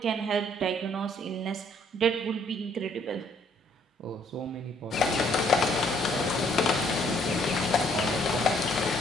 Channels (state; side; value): normal; both; correlation 0.64